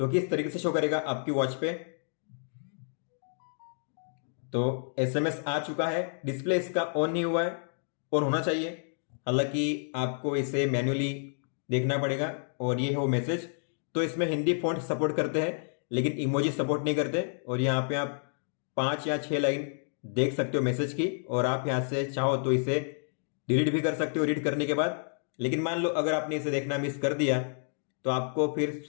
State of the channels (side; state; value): right; silent; digital silence